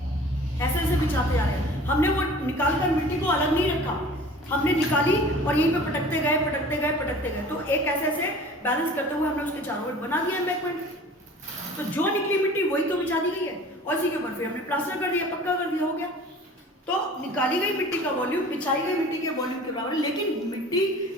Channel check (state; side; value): normal; both; correlation 0.44